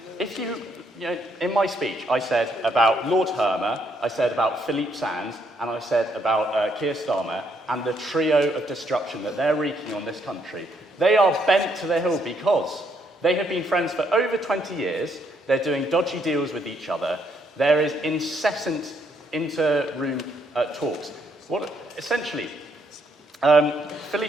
If you know, in my speech, I said about Lord Hermer, I said about Philippe Sands, and I said about Keir Starmer, and the trio of destruction that they're wreaking on this country. They are bent to the hill because they have been friends for over 20 years, they're doing dodgy deals with each other, there is incessant inter-room talks. Essentially,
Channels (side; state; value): both; normal; correlation 0.72